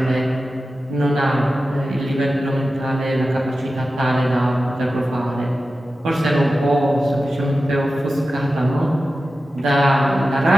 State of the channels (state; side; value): normal; both; correlation 0.93